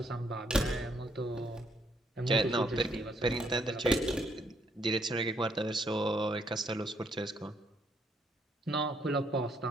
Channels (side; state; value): both; normal; correlation 0.71